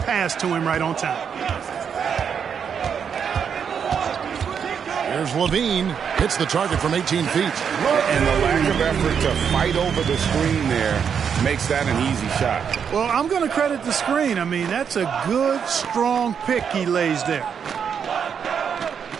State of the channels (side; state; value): left; quieter; 7.2 dB